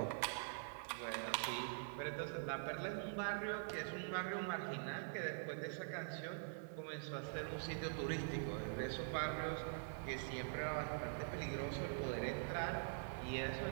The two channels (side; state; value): left; silent; digital silence